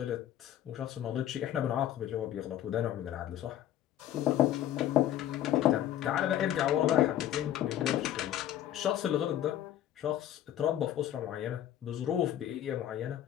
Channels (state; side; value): quieter; right; 11.9 dB